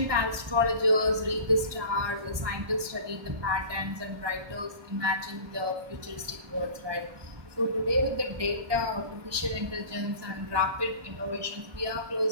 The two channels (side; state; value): left; late; 1.2 ms